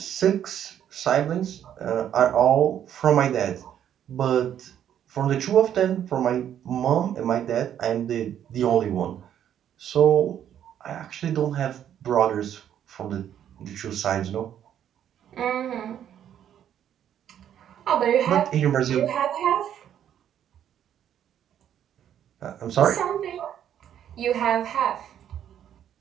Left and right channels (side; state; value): left; quieter; 10.0 dB